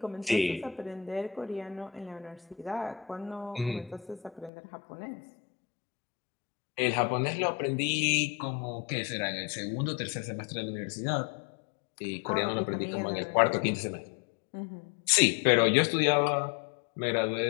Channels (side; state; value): right; drops out; at 4.5 s